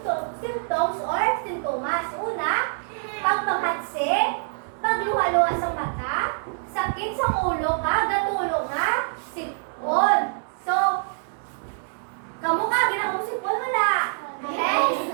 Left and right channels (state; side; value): silent; left; digital silence